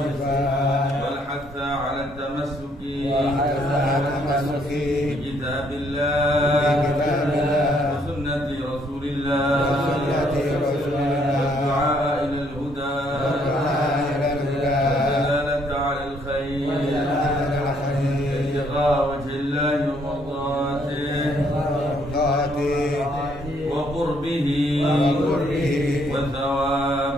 Wal hatha 'ala at-tamassuki. Wal hatha 'ala at-tamassuki. Bi kitabillah. Bi kitabillah. Wa sunnati Rasulillah. وجه الله ومرضاته وقربه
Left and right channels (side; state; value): both; normal; correlation 0.68